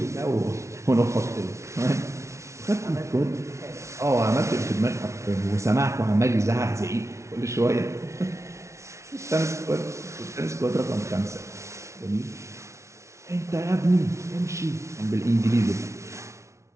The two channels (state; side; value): late; left; 0.14 ms